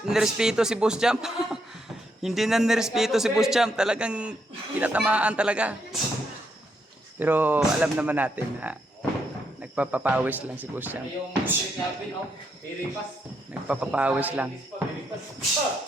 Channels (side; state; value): both; normal; correlation 0.78